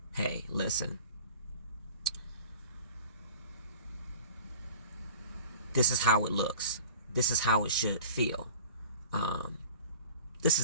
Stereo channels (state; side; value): inverted; both; correlation -0.43